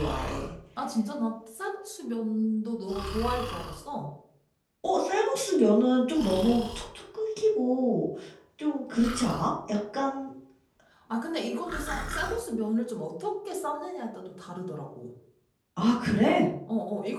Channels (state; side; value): identical; both; correlation 1.00